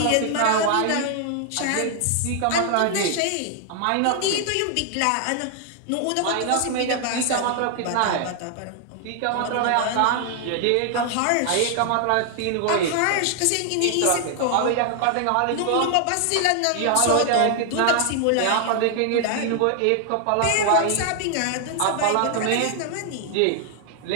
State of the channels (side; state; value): both; different; correlation 0.00